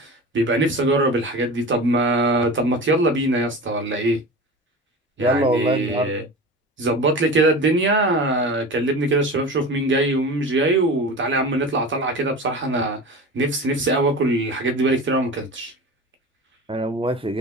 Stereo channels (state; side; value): normal; both; correlation 0.32